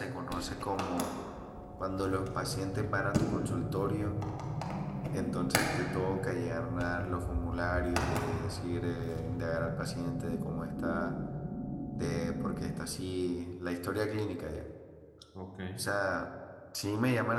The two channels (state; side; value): identical; both; correlation 1.00